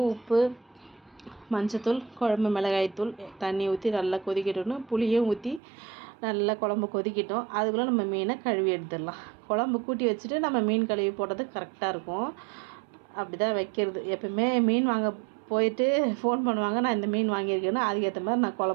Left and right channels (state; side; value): drops out; left; at 5.6 s